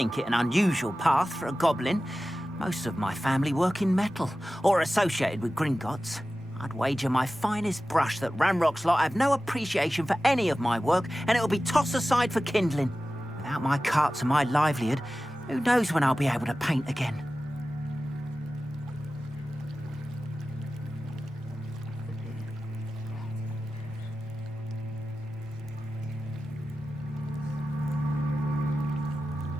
it an unusual path for a goblin. Most of my family work in metal, or associated with Gringotts. I'd wager my finest brush that Ranrock's lot have no appreciation for any of my work, and it'll be tossed aside for kindling. Without my carts and my livelihood, who knows when I'll be able to paint again?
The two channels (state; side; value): normal; both; correlation 0.95